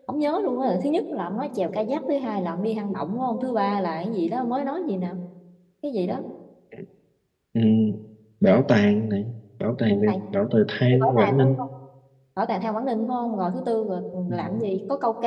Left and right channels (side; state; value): both; identical; correlation 1.00